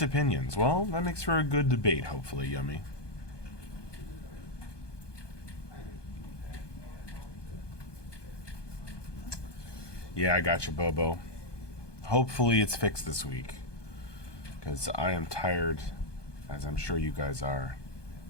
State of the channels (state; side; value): late; right; 1.2 ms